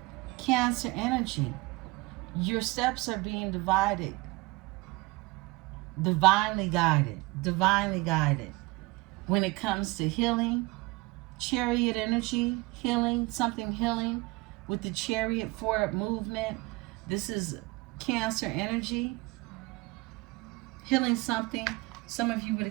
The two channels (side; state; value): left; quieter; 23.0 dB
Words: Cancer energy. Your steps are being divided. Divinely guided. Divinely guided. When it comes to healing, Chariot energy, healing, something healing with the Chariot forward movement. This is Cancer energy. Healing something. Some of you with a